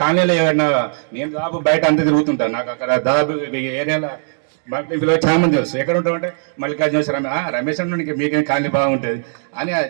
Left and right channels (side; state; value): left; silent; digital silence